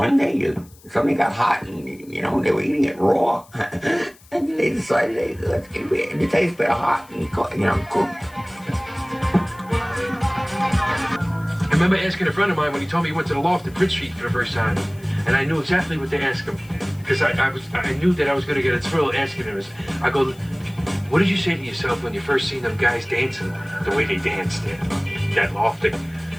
day something got hot and, they were eating it raw. And they decided, it tastes better hot and, cooked. I remember asking a friend of mine when he told me he went to the loft at Bridge Street for the first time. And I knew exactly what to ask him. Because I knew that I was going to get a thrill asking him. I go, what did you say to yourself when you first seen them guys dancing the way they danced there? That loft.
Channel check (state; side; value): noise; left; hiss, 26 dB below the sound